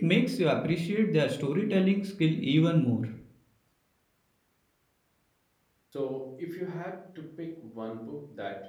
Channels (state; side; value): identical; both; correlation 1.00